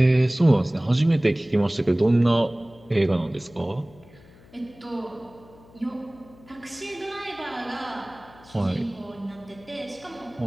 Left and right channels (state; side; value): noise; left; hum, 24 dB below the sound